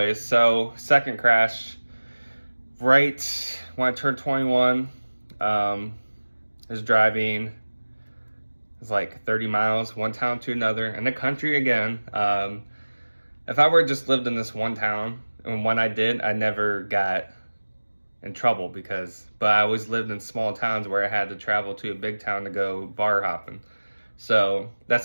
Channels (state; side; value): inverted; both; correlation -1.00